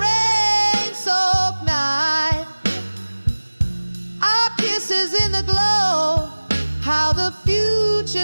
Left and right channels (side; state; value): both; inverted; correlation -1.00